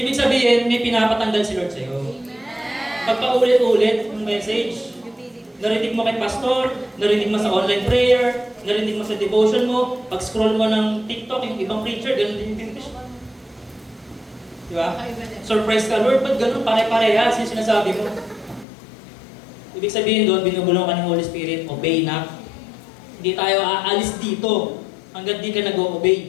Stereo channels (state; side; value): drops out; right; at 18.7 s